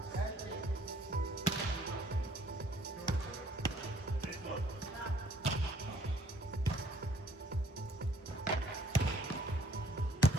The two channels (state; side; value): normal; both; correlation 0.61